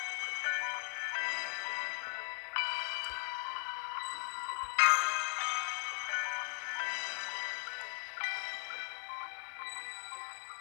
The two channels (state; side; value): silent; right; 52 dB below the other